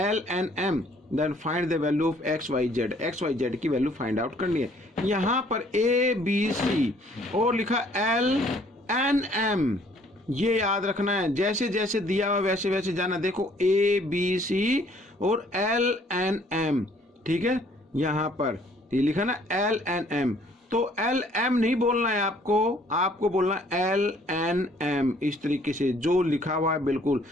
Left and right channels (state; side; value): normal; both; correlation 0.61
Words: then find the value of XYZ की वैल्यू फाइंड आउट करनी है। यहाँ पर ABC और लिखा LNM, ये याद रखना है। जैसे जैसे दिया हुआ वैसे वैसे जाना। देखो ABC और LNM, ठीक है, यहाँ पर ये लिखा ना LNM, तो LM नहीं बोलना है आपको बोलना LNM इस तरीके से जो लिखा हुआ है। बिल्कुल